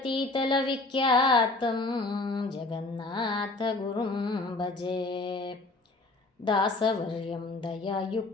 ವಿಖ್ಯಾತಂ ಜಗನ್ನಾಥ ಗುರುಂ ಭಜೆ. ದಾಸವರ್ಯಂ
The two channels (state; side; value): quieter; right; 3.2 dB